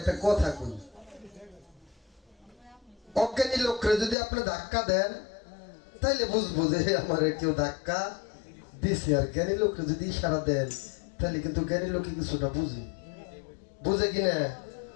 কথা কই, অজ্ঞানী লোকরে যদি আপনি ধাক্কা দেন তাইলে বুঝবো যে আমার কেউ ধাক্কা দিছে, আর জ্ঞানী লোকরে যদি ইশারা দেন তাহলে কিন্তু জ্ঞানী লোকে কিছুটা বুঝে কিনা।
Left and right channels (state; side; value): drops out; right; at 4.2 s